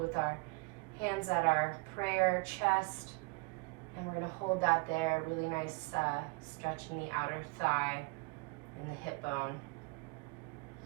our hands at our prayer chest. And we're going to hold that there, really nice stretch in the outer thigh and the hip bone.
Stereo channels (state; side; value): quieter; left; 28.9 dB